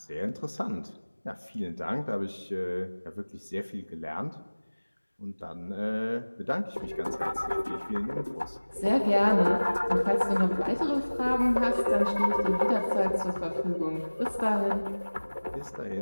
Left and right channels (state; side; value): inverted; both; correlation -1.00